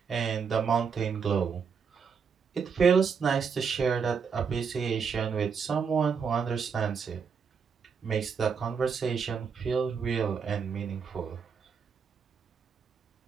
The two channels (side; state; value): left; quieter; 6.2 dB